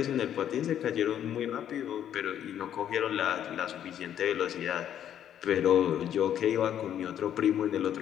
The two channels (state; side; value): quieter; right; 10.1 dB